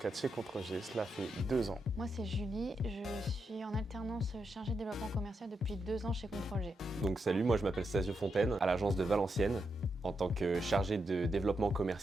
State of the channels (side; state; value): both; normal; correlation 0.84